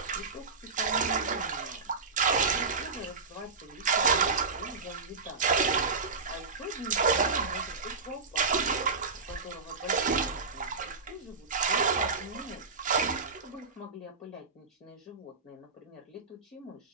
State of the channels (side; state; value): left; quieter; 4.7 dB